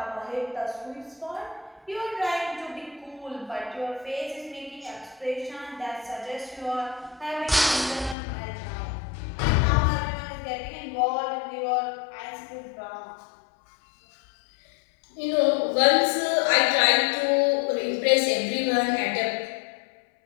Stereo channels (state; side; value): drops out; right; at 8.2 s